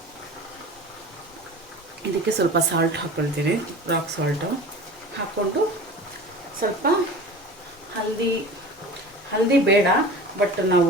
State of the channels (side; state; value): both; normal; correlation 0.37